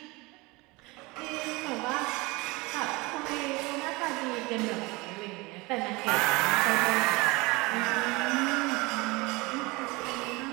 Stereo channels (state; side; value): quieter; left; 24.2 dB